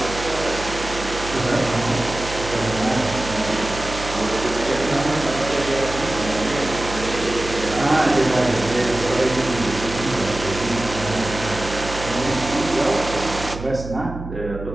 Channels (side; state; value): right; noise; hum, 10 dB below the sound